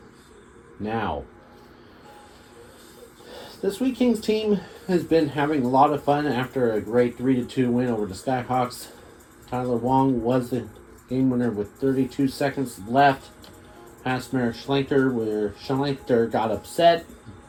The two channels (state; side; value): identical; both; correlation 1.00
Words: now. This Weeking's team has been having a lot of fun after a great 3-2 win over the Skyhawks. Tyler Wong was the game winner with 32 seconds left. Past Merrick Schlenker, where Schlenker got upset